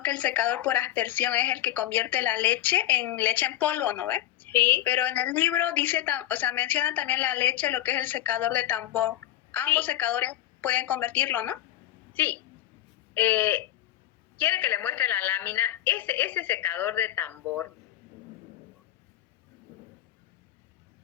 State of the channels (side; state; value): right; quieter; 13.7 dB